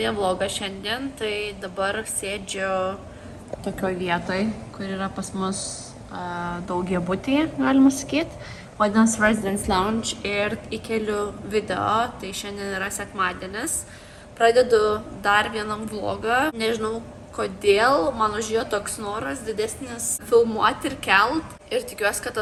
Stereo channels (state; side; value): identical; both; correlation 1.00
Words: vlogą šiandien, tai dabar sėdžiu tokioj vietoj, kur yra pas mus daugiabutyje, galima sakyti. Vadinasi Residence Lounge ir įkeliu video, tai šiandien yra sekmadienis. Pradedu dar vienam vlogą, nežinau kodėl, man užėjo toks noras didesnis filmuoti ir kelt. Ir tikiuosi, kad